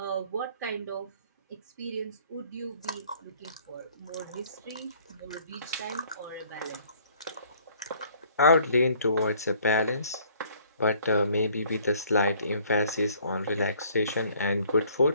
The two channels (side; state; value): both; inverted; correlation -0.58